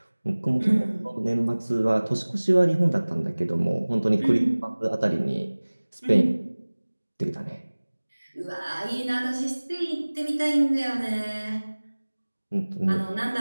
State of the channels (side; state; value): both; inverted; correlation -1.00